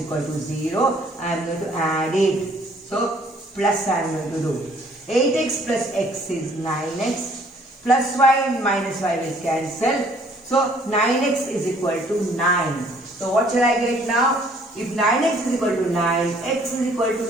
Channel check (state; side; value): normal; both; correlation 0.60